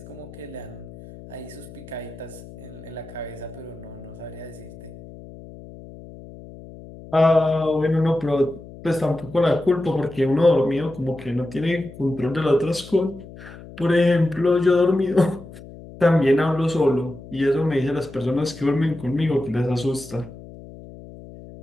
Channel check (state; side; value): noise; left; hum, 17 dB below the sound